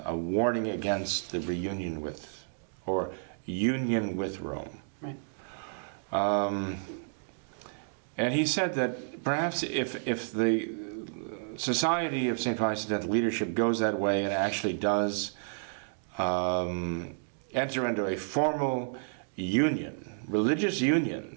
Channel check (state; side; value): silent; left; digital silence